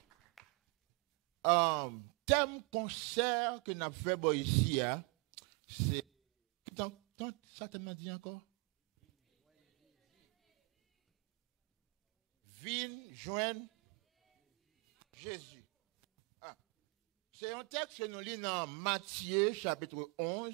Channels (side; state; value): left; quieter; 30.0 dB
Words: Thème concert que nous avons fait ici, c'est. Ça t'a dit encore? Viens joindre Jésus. C'est un texte que nous lisons dans Matthieu, chapitre 11,